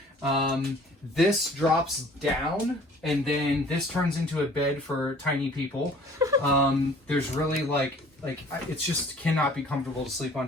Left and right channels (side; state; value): both; normal; correlation 0.51